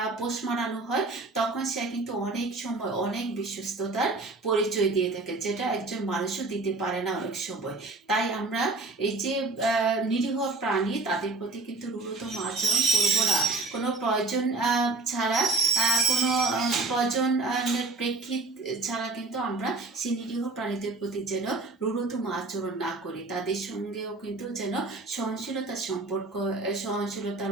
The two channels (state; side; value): quieter; left; 3.3 dB